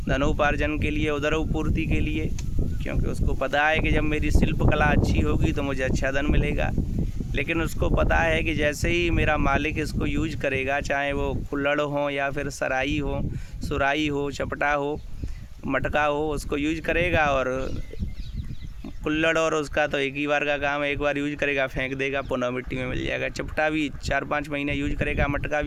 धनोपार्जन के लिए, उदरोपूर्ति के लिए, क्योंकि उसको पता है कि जब मेरी शिल्प कला अच्छी होगी तो मुझे अच्छा धन मिलेगा। लेकिन उसको पता है कि जैसे ही मेरा मालिक इसको यूज करेगा, चाहे वो कुल्हड़ हो या फिर सराई हो, सुराई हो, चपटा हो, मटका हो, उसको यूज करेगा और कुल्हड़ और उसका तो एक ही बार का काम है, एक बार यूज करेगा फेंक देगा, पुनः मिट्टी में मिल जाएगा। चपटा भी 4-5 महीने यूज करेगा, मटका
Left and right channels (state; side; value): identical; both; correlation 1.00